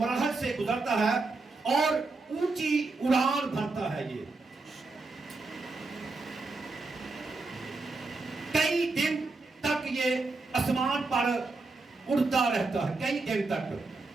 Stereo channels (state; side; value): quieter; left; 3.6 dB